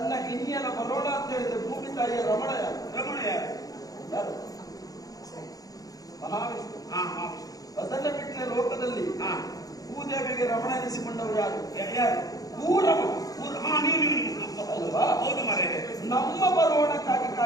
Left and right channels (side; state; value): right; late; 0.18 ms